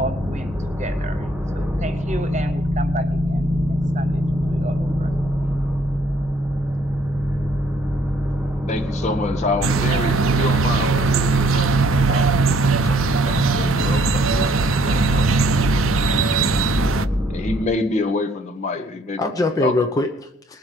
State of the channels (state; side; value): normal; both; correlation 0.64